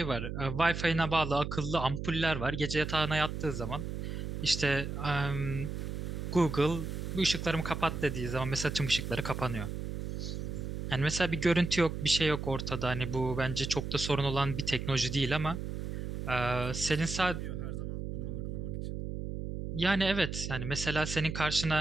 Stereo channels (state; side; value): noise; right; hum, 5 dB below the sound